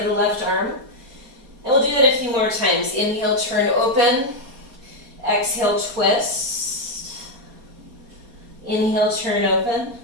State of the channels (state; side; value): late; left; 4.2 ms